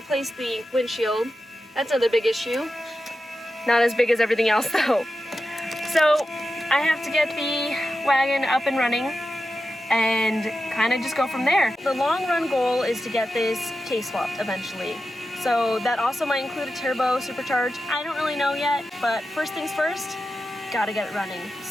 the windshield. That's another big issue. Not as big as everything else though. So I have to get the wagon up and running and kind of just go from there. The long run goal is to get this case swapped eventually. So that also might include a turbo supercharge. I don't really know yet, but first things first, gotta get it running.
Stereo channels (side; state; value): both; normal; correlation 0.91